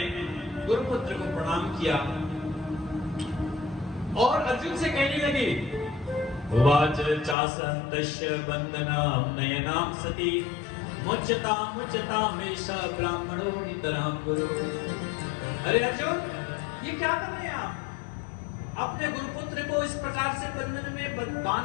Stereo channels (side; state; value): right; drops out; at 7.4 s